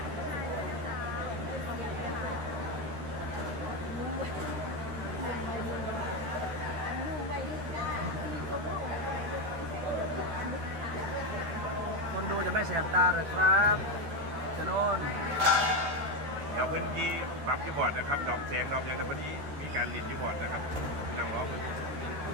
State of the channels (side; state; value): left; late; 13 ms